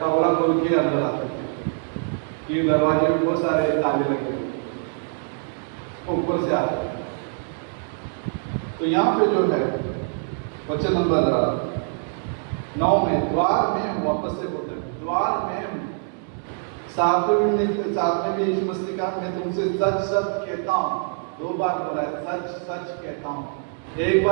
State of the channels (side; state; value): left; silent; 56 dB below the other